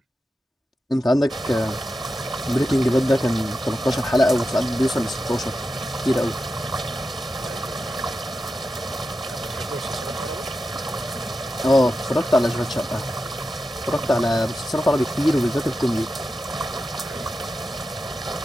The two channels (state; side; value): normal; both; correlation 0.90